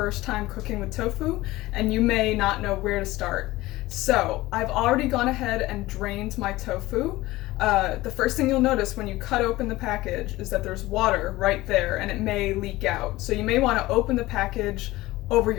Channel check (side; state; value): right; quieter; 18.4 dB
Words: time cooking with tofu and you may not know where to start. So I've already gone ahead and drained my tofu. The first thing you'll notice when you cut open the package is that there's water right there and it may leak out. So you may want to open the package over